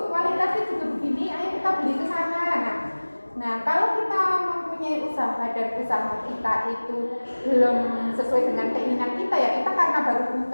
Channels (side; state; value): both; inverted; correlation -1.00